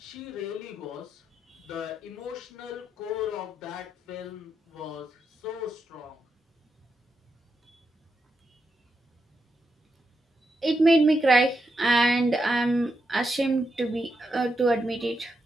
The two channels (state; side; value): normal; both; correlation 0.84